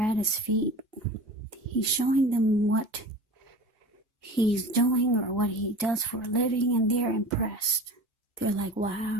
his feet, he's showing them what he's doing or what he does for a living, and they're impressed. They're like,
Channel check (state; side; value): normal; both; correlation 0.36